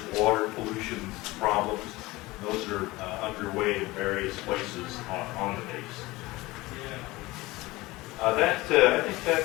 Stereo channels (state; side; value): quieter; right; 20.3 dB